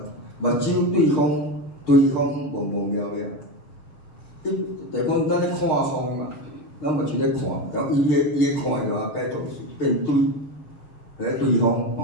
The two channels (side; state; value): right; late; 6.6 ms